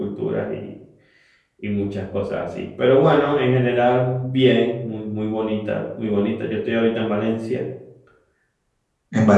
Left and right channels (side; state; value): both; identical; correlation 1.00